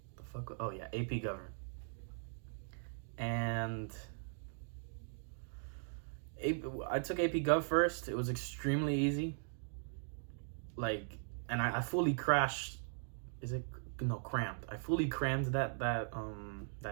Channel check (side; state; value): left; silent; digital silence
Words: The fuck? Oh yeah, AP Government. And I took AP Gov first. It was extremely easy. Like, and I fully crashed. Crammed. I fully crammed